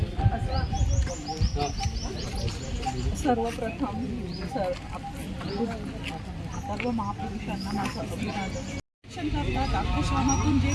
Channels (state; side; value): identical; both; correlation 1.00